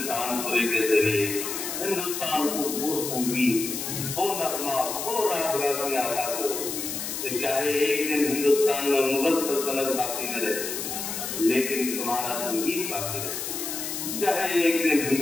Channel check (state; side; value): noise; left; hiss, 5 dB below the sound